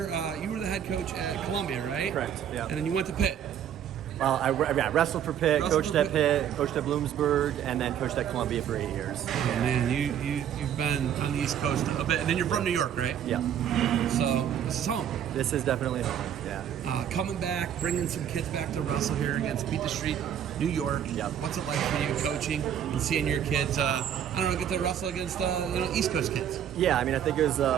You were the head coach at Columbia, right? Correct, yeah. And then you went to Pitt. Well, I wrestled for Pitt, coached at Pitt, coached at Bloomsburg, and then coached at Columbia for 8 years. Oh, man, you've been on the East Coast a bit. And then you're from New York, right? Yeah. So this is home. This is definitely home, yeah. Coming back, bringing some kids back to wrestle here against Beat the Street, New York. Yep. What's it like for you coaching and seeing your kids, get to wrestle against East Coast kids? Yeah, I mean, I think it was an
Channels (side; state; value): left; quieter; 9.5 dB